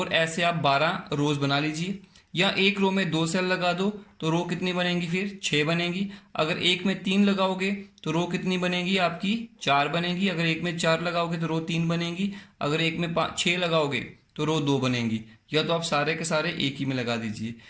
ऐसे आप 12 रोज बना लीजिए, या एक रो में 2 सेल लगा दो तो रो कितनी बनेंगी, फिर 6 बनेगी। अगर एक में 3 लगाओगे तो रो कितनी बनेगी आपकी, 4 बनेगी। अगर एक में 4 लगाओगे तो रो 3 बनेगी। अगर एक में 6 लगाओगे तो रो 2 बनेंगी। या तो आप सारे के सारे एक ही में लगा दीजिए।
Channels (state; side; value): identical; both; correlation 1.00